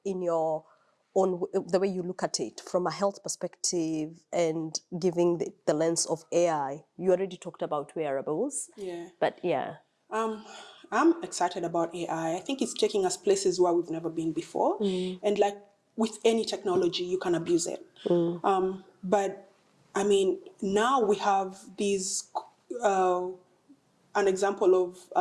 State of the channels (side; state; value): both; identical; correlation 1.00